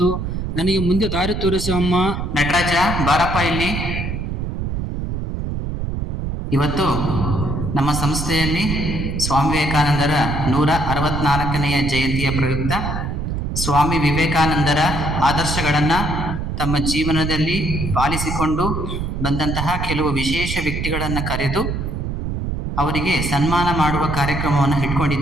ನನಗೆ ಮುಂದೆ ದಾರಿ ತೋರಿಸಿ ಅಮ್ಮ. ನಟರಾಜ, ಬಾರಪ್ಪ ಇಲ್ಲಿ. ಇವತ್ತು ನಮ್ಮ ಸಂಸ್ಥೆಯಲ್ಲಿ ಸ್ವಾಮಿ ವಿವೇಕಾನಂದರ 164ನೆಯ ಜಯಂತಿಯ ಪ್ರಯುಕ್ತ ಸ್ವಾಮಿ ವಿವೇಕಾನಂದರ ಆದರ್ಶಗಳನ್ನು ತಮ್ಮ ಜೀವನದಲ್ಲಿ ಪಾಲಿಸಿಕೊಂಡು ಬಂದಂತಹ ಕೆಲವು ವಿಶೇಷ ವ್ಯಕ್ತಿಗಳನ್ನು ಕರೆದು ಅವರಿಗೆ ಸನ್ಮಾನ ಮಾಡುವ ಕಾರ್ಯಕ್ರಮವನ್ನು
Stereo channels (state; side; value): noise; right; rumble, 3 dB below the sound